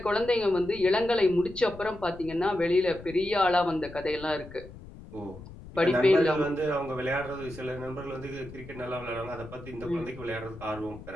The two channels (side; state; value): left; noise; rumble, 16 dB below the sound